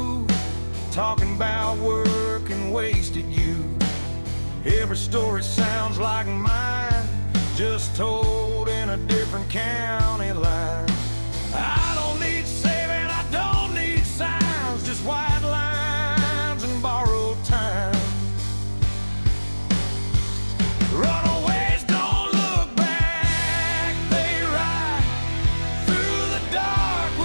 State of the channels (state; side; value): inverted; both; correlation -1.00